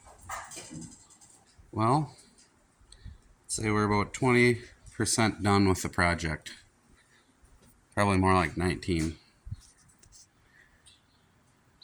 Well, say we're about 20% done with the project. Probably more like 19.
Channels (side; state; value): both; identical; correlation 1.00